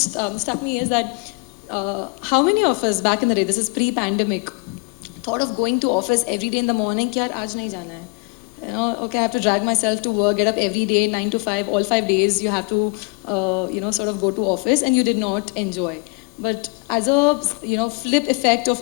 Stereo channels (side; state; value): right; quieter; 31.0 dB